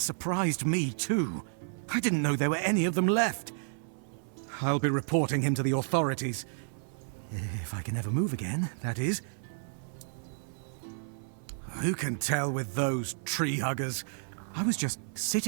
me, too. I didn't know there were any of them left. I'll be reporting him to the authorities. If I can ever move again, that is. Who can tell with those tree huggers? I was just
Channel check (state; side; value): silent; left; 57 dB below the other